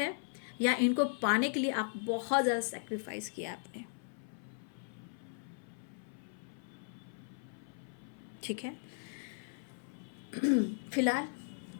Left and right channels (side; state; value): right; silent; 53 dB below the other